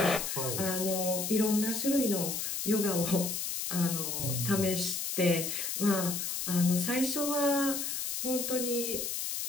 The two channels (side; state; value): left; noise; hiss, 2 dB below the sound